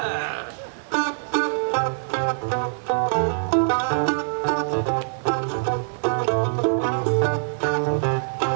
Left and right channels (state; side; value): silent; left; digital silence